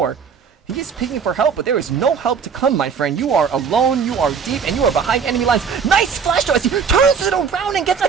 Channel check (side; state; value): left; quieter; 6.4 dB